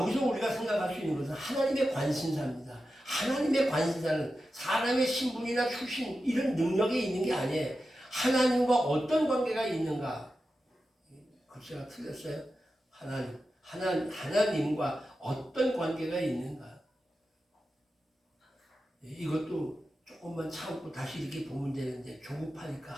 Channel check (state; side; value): normal; both; correlation 0.91